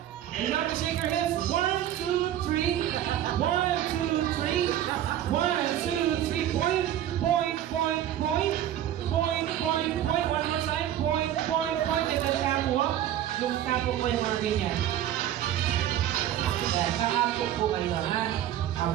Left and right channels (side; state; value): left; quieter; 11.7 dB